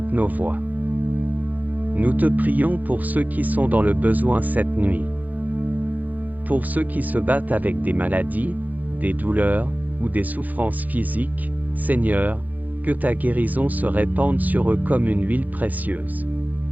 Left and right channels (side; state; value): left; late; 0.081 ms